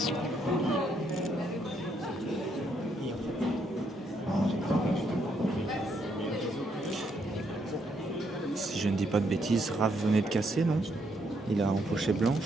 Si je ne dis pas de bêtises, Raph venait de casser, non? Il a empoché blanche.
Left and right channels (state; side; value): normal; both; correlation 0.74